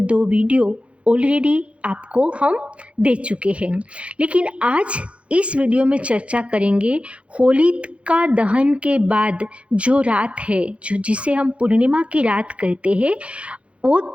2 वीडियो ऑलरेडी आपको हम दे चुके हैं। लेकिन आज इस वीडियो में चर्चा करेंगे होलिका दहन के बाद जो रात है, जो जिसे हम पूर्णिमा की रात कहते हैं, वो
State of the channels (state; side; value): late; left; 0.061 ms